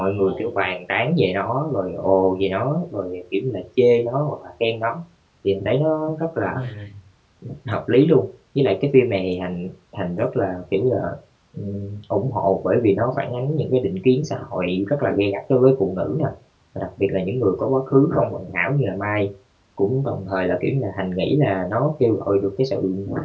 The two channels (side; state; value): both; identical; correlation 1.00